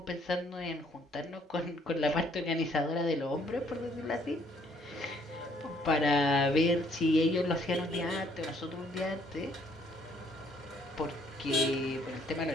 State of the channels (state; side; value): normal; both; correlation 0.65